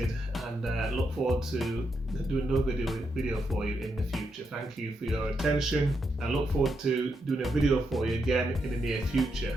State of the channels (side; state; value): both; normal; correlation 0.82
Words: and look forward to doing another video for you in the future. Thank you for your attention. I look forward to doing a video for you again in the near